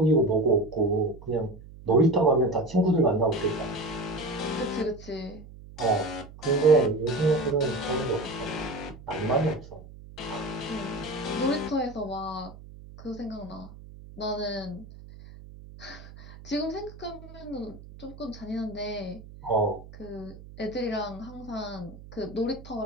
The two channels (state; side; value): noise; right; hum, 17 dB below the sound